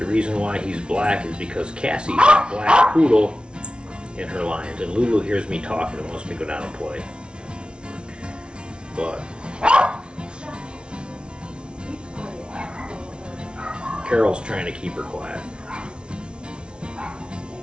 reason why he's black is because Cassie's a black poodle in her lines, and Lulu hears me talking and wants me to go down and play. But Carol's trying to keep her quiet.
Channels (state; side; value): late; left; 0.057 ms